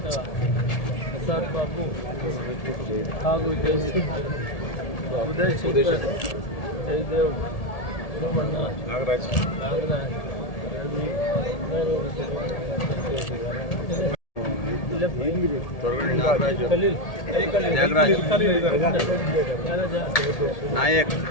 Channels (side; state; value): right; late; 1.8 ms